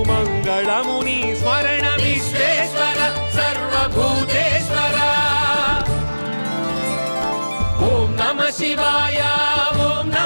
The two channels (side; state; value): both; inverted; correlation -1.00